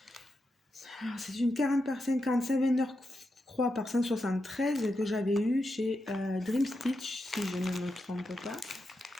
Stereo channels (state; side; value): normal; both; correlation 0.86